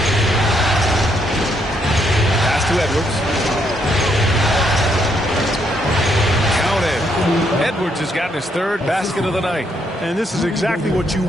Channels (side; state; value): both; normal; correlation 0.74